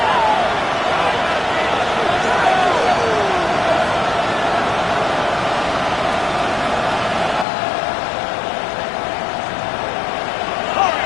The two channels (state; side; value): drops out; right; at 7.5 s